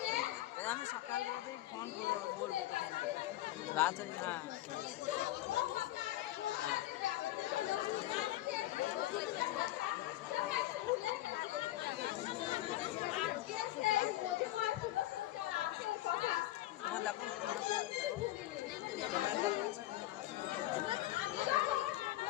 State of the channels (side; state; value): right; quieter; 15.4 dB